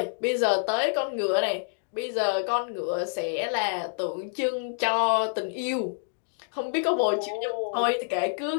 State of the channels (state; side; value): silent; right; digital silence